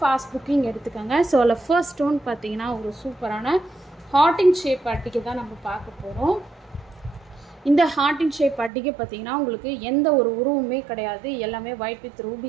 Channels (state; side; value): drops out; left; at 8.7 s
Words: fast booking எடுத்துக்கங்க. சோ the first one பாத்தீங்கன்னா ஒரு சூப்பரான heart in shape அட்டிகை தான் நம்ம பார்க்க போறோம். இந்த heart in shape அட்டிகை பாத்தீங்கன்னா உங்களுக்கு எந்த ஒரு உருவமே கிடையாது. எல்லாமே white with